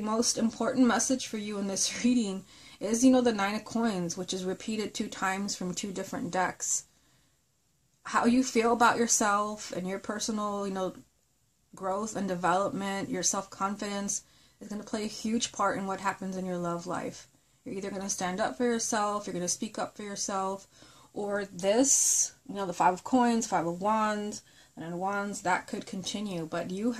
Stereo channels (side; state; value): both; identical; correlation 1.00